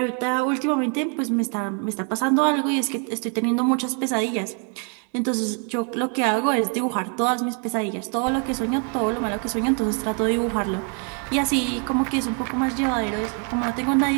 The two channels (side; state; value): left; quieter; 39.4 dB